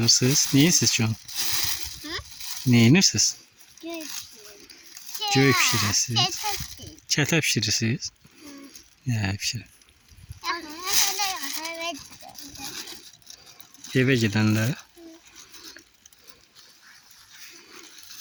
Neyin siz şu an? Neyiniz siz? Göğe pişirirsiniz. Çete pişirirsiniz. Ya pişirin. Eve gidenlere.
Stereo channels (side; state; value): both; identical; correlation 1.00